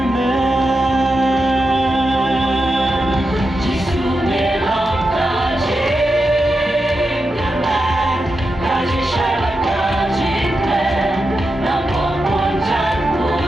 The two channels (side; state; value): both; normal; correlation 0.88